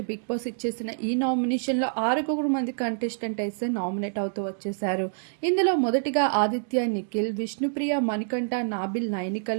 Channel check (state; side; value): silent; left; digital silence